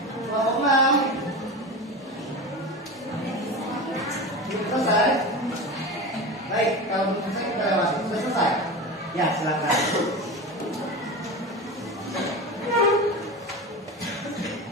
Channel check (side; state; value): both; normal; correlation 0.26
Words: Kelompok 6 selesai? Baik, kalau belum selesai kita lewati. Sudah selesai? Ya, silakan.